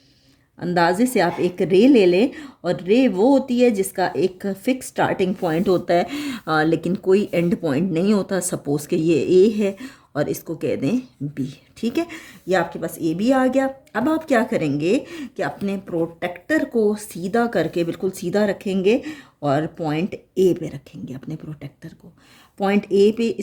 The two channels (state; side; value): identical; both; correlation 1.00